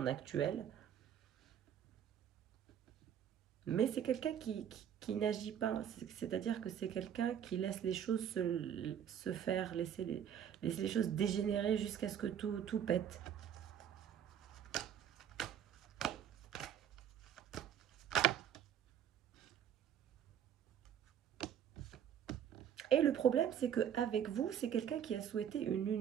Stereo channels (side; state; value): left; quieter; 9.2 dB